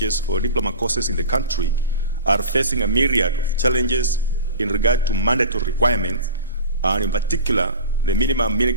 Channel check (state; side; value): inverted; both; correlation -0.34